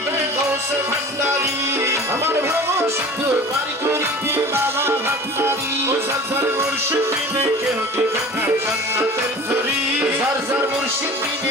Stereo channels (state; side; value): normal; both; correlation 0.40